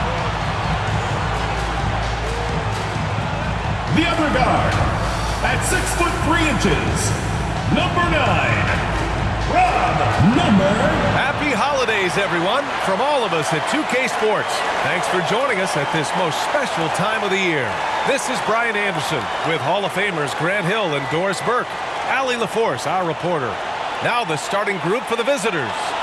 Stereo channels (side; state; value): both; identical; correlation 1.00